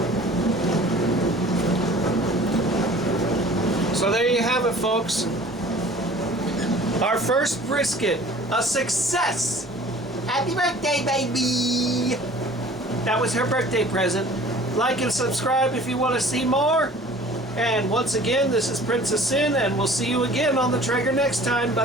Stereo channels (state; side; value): normal; both; correlation 0.47